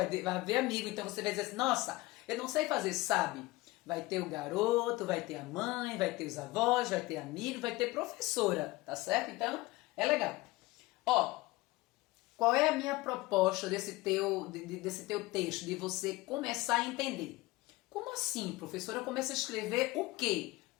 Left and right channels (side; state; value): right; quieter; 20.4 dB